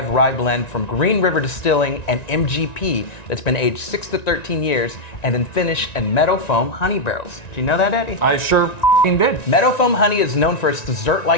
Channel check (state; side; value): late; right; 1.9 ms